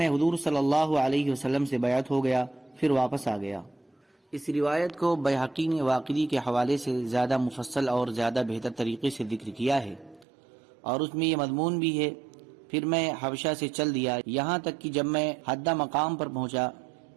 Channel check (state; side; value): drops out; left; at 10.2 s